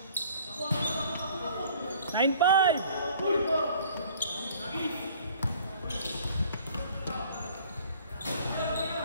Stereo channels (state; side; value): inverted; both; correlation -0.53